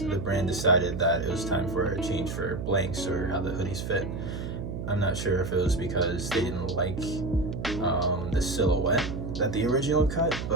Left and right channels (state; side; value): noise; right; hum, 6 dB below the sound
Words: The brand decided that it was time for a change for blanks or how the hoodies fit. I'm not sure if it was because they didn't like the silhouette that the original cut,